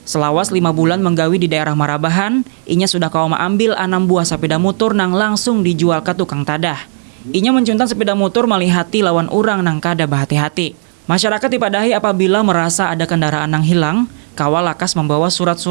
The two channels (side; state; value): left; silent; digital silence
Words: selawas 5 bulan menggawi di daerah Marabahan, inya sudah kau mengambil 6 buah sepeda motor nang langsung dijual ke tukang tadah. Inya mencuntan sepeda motor malihati lawan orang nang kada bahati-hati. Masyarakat dipadahi apabila merasa ada kendaraan yang hilang, kawal lakas membawa